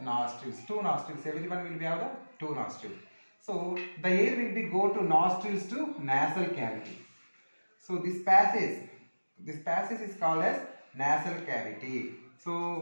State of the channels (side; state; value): both; inverted; correlation -1.00